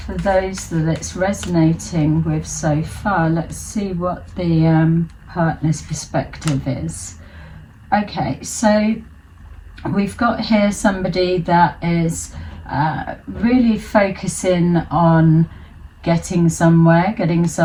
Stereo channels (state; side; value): identical; both; correlation 1.00